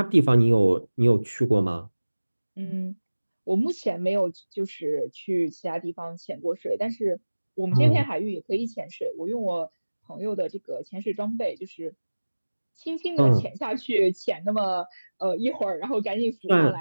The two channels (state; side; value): inverted; both; correlation -1.00